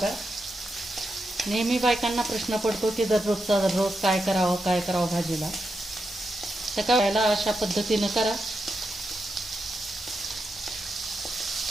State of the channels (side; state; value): both; normal; correlation 0.86